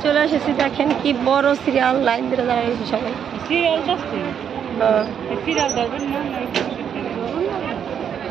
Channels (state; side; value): quieter; left; 8.3 dB